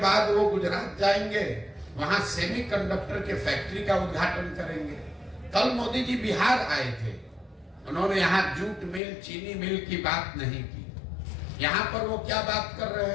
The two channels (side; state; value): right; drops out; at 9.0 s